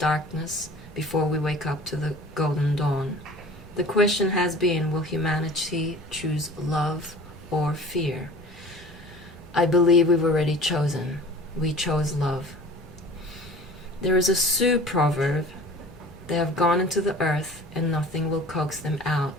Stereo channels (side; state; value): both; normal; correlation 0.43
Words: before we wake up to the golden dawn. The question has been, will humanity choose love or fear? I believe we've already chosen. We chose love. There is a Sioux proverb, they have gone into the earth and nothing will coax them out